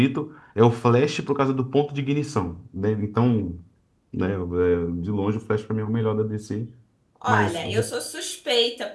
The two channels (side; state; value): both; identical; correlation 1.00